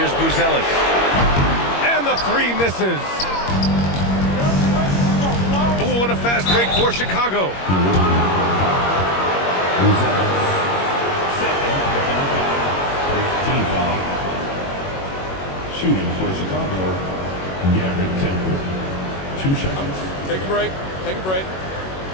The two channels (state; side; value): late; right; 21 ms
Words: Buzelis. And the 3 misses. Oh, what a fast break for Chicago. Team foul. Shooting for Chicago, Garrett Temple. 2 shots. Take a break. Take a break.